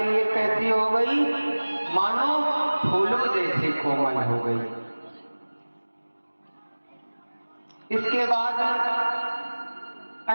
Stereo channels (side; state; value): both; inverted; correlation -1.00